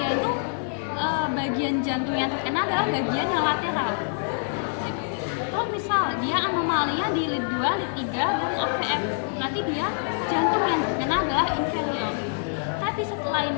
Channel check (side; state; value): right; silent; digital silence